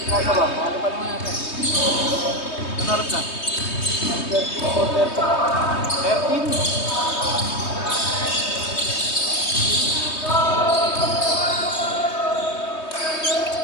Kaya ba? Ano pa naman natin? Ano oras na? 13.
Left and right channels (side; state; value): right; late; 3.2 ms